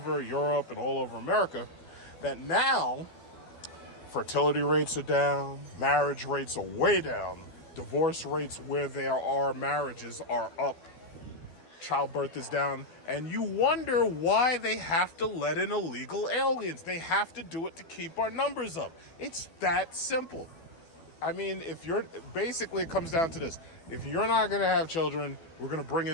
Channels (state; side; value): late; right; 12 ms